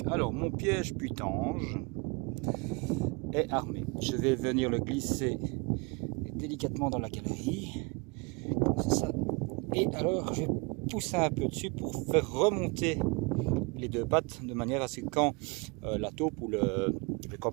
alors mon piège putange est armé. Je vais venir le glisser délicatement dans la galerie, comme ça. Et alors je vais pousser un peu dessus pour faire remonter les deux pattes, de manière à ce que quand la taupe ou le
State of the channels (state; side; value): quieter; left; 29.7 dB